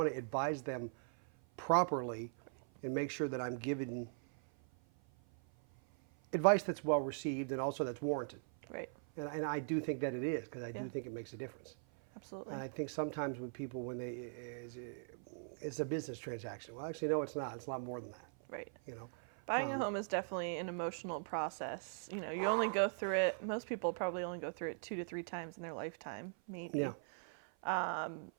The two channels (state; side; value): silent; left; 51 dB below the other